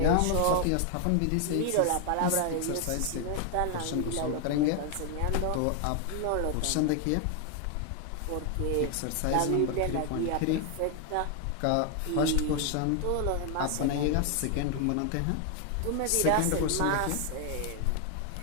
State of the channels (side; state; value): both; different; correlation 0.01